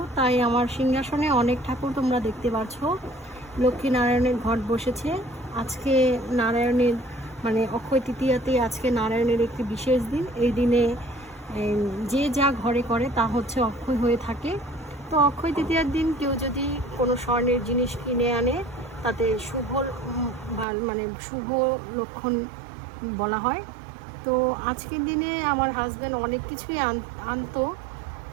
তাই আমার সিংহাসনে অনেক ঠাকুর তোমরা দেখতে পাচ্ছ। লক্ষ্মীনারায়ণের ঘট বসেছে আজকে। নারায়ণের মানে অক্ষয় তৃতীয়াতে আজকে নারায়ণের একটি বিশেষ দিন। এই দিনে যে যা ঘরে করে তা হচ্ছে অক্ষয় হয়ে থাকে। তো অক্ষয় তৃতীয়ার দিন কেউ যদি কোনো স্বর্ণের জিনিস কিনে আনে তাতে মানে শুভ লক্ষণ বলা হয়। তো আজকের দিনে আমার হাজব্যান্ড অনেক কিছুই আনতো,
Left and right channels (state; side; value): drops out; left; at 20.7 s